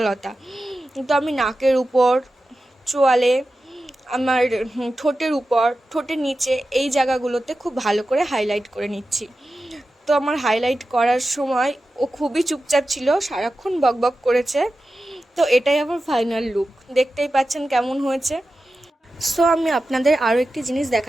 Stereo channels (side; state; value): both; normal; correlation 0.93